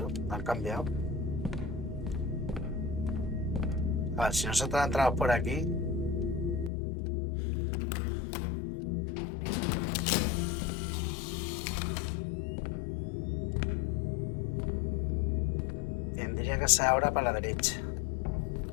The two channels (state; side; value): drops out; right; at 6.7 s